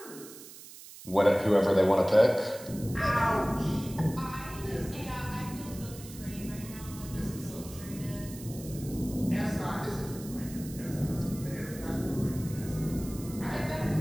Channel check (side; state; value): right; noise; hiss, 16 dB below the sound